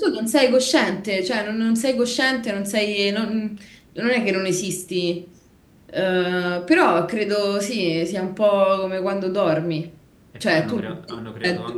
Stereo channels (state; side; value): identical; both; correlation 1.00